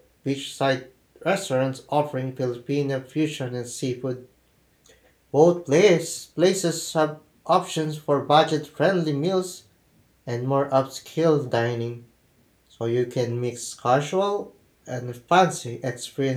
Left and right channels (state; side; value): identical; both; correlation 1.00